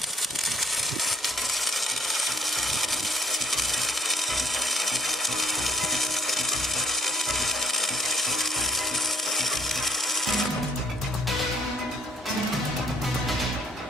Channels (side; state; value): both; normal; correlation 0.61